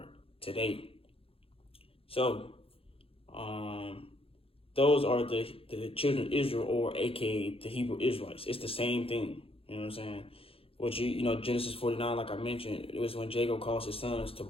today. So, those are the children of Israel, or aka the Hebrew Israelites. It's the same thing, you know what I'm saying? Which, Genesis 49, like I mentioned, it was when Jacob calls his sons to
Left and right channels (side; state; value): right; late; 0.27 ms